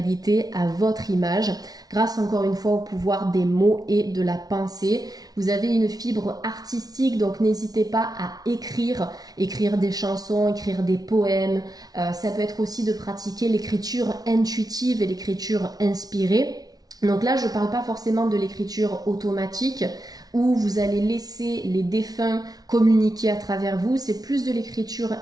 à votre image grâce encore une fois au pouvoir des mots et de la pensée. Vous avez une fibre artistique, donc n'hésitez pas à écrire des chansons, écrire des poèmes. Ça peut être aussi de pratiquer l'écriture intuitive et l'écriture inspirée. Donc là, je ne parle pas forcément de l'écriture automatique où vous allez laisser les défunts communiquer à travers vous. C'est plus de l'écriture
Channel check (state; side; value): late; left; 0.19 ms